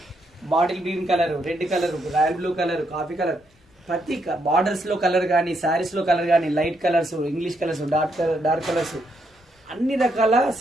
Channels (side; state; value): both; normal; correlation 0.77